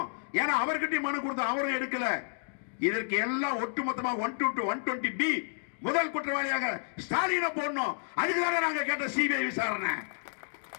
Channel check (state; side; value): silent; right; digital silence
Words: ஏன்னா அவர்கிட்ட மனு கொடுத்தோம், அவரும் எடுக்கல. இதற்கு எல்லாம் ஒட்டுமொத்தமாக 120B முதல் குற்றவாளியாக ஸ்டாலினை போடணும். அதுக்குதாங்க நாங்க கேட்ட சிபிஐ விசாரணை.